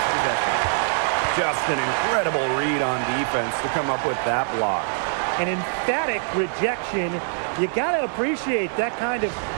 possession. Just an incredible read on defense to come up with that block. An emphatic rejection. You got to appreciate that kind of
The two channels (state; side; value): silent; left; digital silence